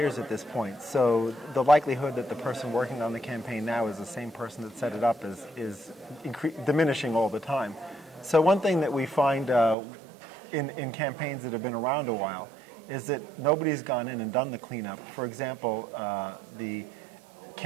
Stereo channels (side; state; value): left; drops out; at 9.8 s